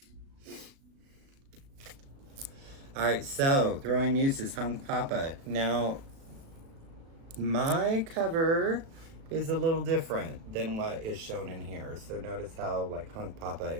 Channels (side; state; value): left; late; 37 ms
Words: All right, so Throwing Muses, Hunk Papa. Now, my cover is a little different than what is shown in here. So notice how like Hunk Papa